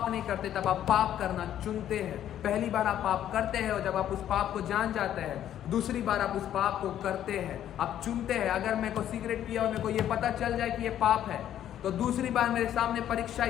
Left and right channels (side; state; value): right; quieter; 11.1 dB